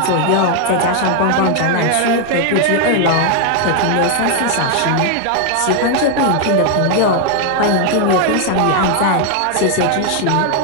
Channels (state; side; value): different; both; correlation 0.00